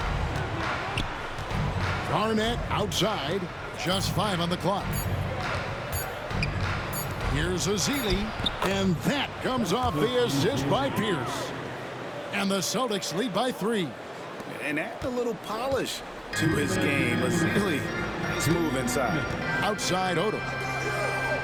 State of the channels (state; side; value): identical; both; correlation 1.00